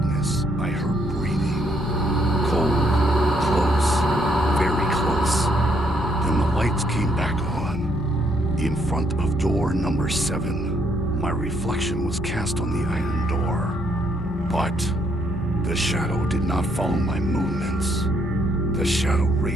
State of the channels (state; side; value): normal; both; correlation 0.71